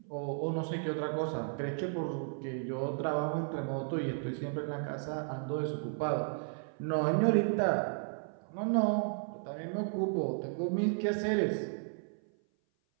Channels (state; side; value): silent; left; 55 dB below the other